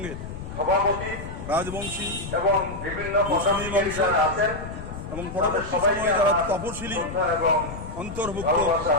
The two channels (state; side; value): noise; left; rumble, 10 dB below the sound